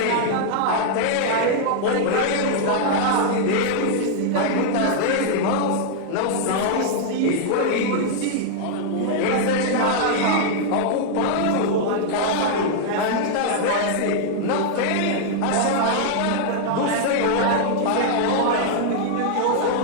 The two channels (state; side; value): different; both; correlation -0.01